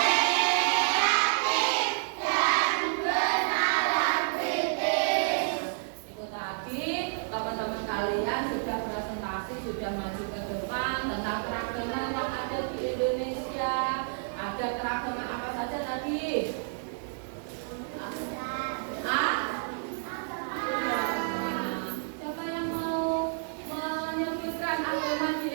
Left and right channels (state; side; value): silent; left; digital silence